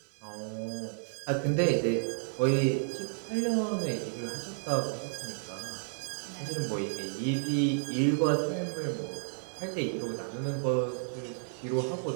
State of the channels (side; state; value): left; silent; digital silence